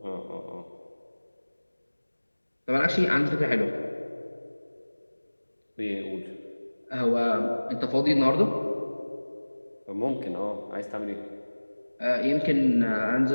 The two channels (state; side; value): inverted; both; correlation -1.00